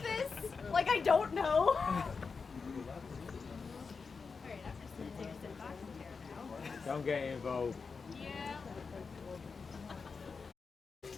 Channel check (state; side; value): quieter; right; 5.0 dB